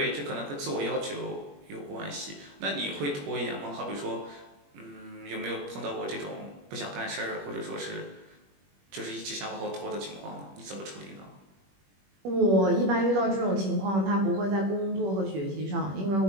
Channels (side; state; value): left; late; 21 ms